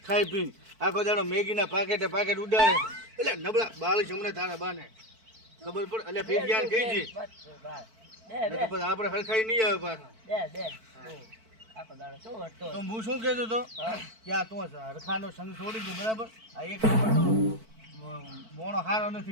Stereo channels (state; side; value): late; left; 4.5 ms